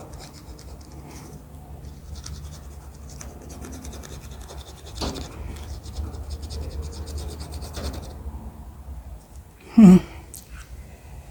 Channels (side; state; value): both; identical; correlation 1.00